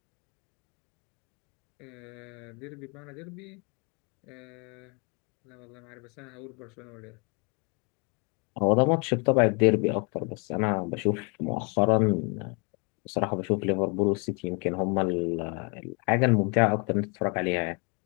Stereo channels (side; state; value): right; quieter; 32.8 dB